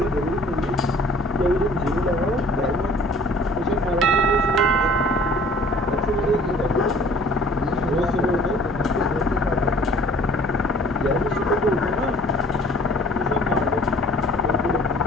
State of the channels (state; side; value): normal; both; correlation 0.52